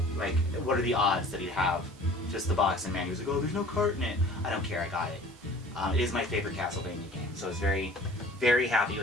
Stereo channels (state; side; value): normal; both; correlation 0.48